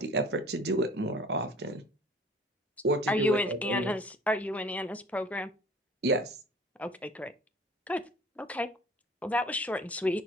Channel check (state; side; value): normal; both; correlation 0.48